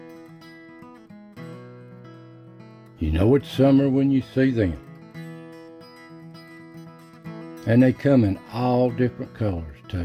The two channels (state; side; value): identical; both; correlation 1.00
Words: You know it's summer when you see them. And they come in all different colors